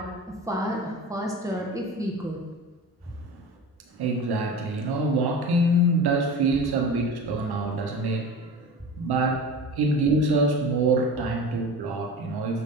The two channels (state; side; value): normal; both; correlation 0.33